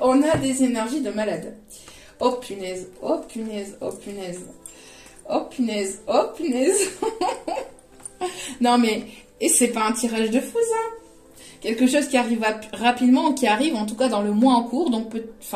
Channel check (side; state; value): both; identical; correlation 1.00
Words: a des énergies de malade. Oh punaise, oh punaise, oh punaise. Oh punaise, oh punaise. Non mais, et c'est pas un tirage de fou, ça. Quelque chose qui arrive rapidement, qui arrive en tout cas dans le mois en cours, donc